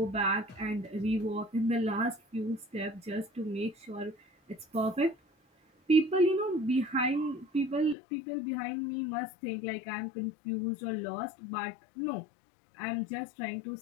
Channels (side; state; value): right; drops out; at 8.0 s